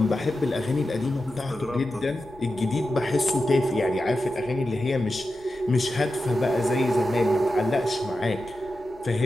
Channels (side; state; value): both; normal; correlation 0.91